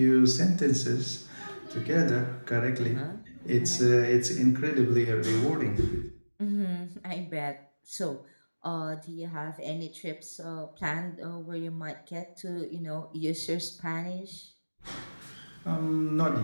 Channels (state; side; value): inverted; both; correlation -1.00